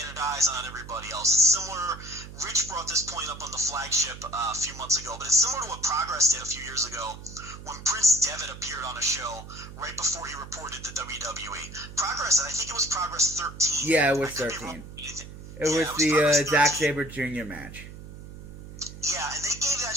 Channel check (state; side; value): noise; right; hum, 14 dB below the sound